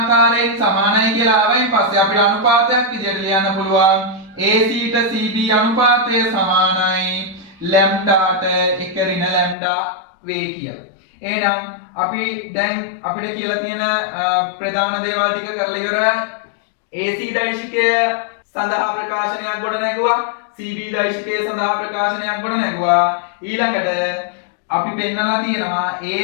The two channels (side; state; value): right; drops out; at 9.6 s